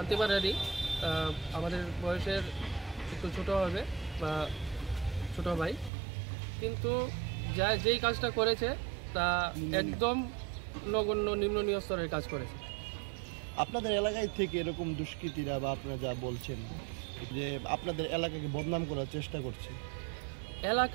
আমাদের বয়সের একটু ছোট হবে বা ছোট ভাই, কিন্তু যেই কাজটা করেছে তা একদম নগণ্য নিম্ন স্তরের কাজ করেছে। আপনাদের এলাকায় থেকে এরকম দুষ্কৃতীরা বা আপনারা যা বলছেন যে আপনাদের এলাকাকে বদনাম করার চেষ্টা করছে,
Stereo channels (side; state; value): left; drops out; at 5.9 s